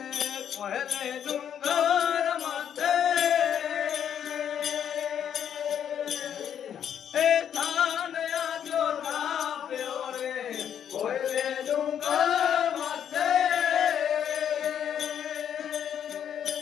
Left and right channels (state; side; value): quieter; right; 9.1 dB